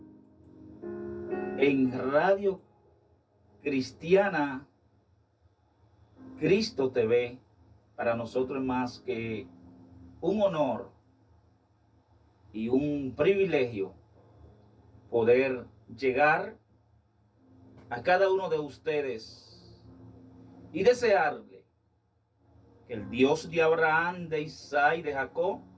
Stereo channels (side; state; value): both; identical; correlation 1.00